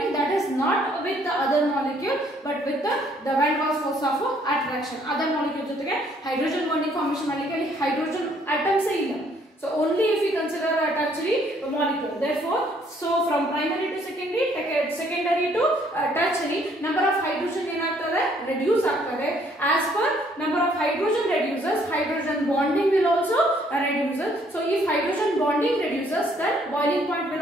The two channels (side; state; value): both; normal; correlation 0.65